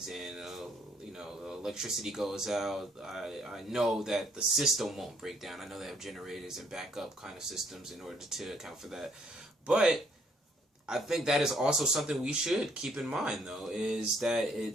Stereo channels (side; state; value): both; normal; correlation 0.66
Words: and the electricity goes out. I know that the system won't break down. I know they have generators and backup kind of systems in order to account for that. But I think that is also something we should keep in mind, though, is